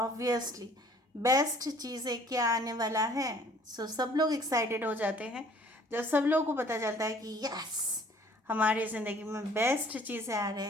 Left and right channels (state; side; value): normal; both; correlation 0.55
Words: बेस्ट चीज़ें क्या आने वाला है. सब लोग एक्साइटेड हो जाते हैं जब सब लोगों को पता चलता है कि यस हमारी ज़िंदगी में बेस्ट चीज़ें आ